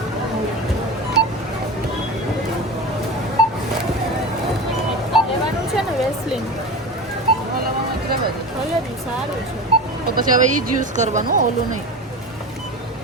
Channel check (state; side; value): normal; both; correlation 0.27